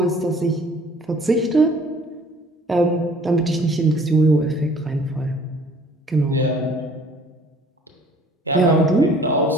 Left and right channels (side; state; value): both; normal; correlation 0.53